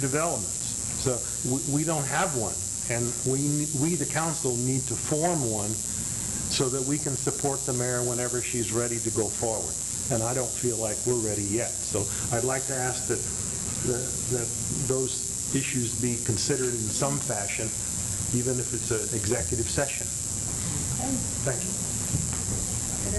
So we don't have one, and we, the council, need to form one so that we can support the mayor whenever she's ready to go forward. And I don't feel like we're ready yet. So I'd like to ask that those issues be considered in some fashion, even if it's an executive session. Thank you.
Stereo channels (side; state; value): both; identical; correlation 1.00